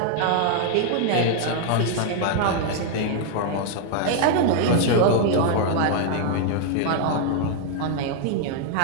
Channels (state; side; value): different; both; correlation 0.00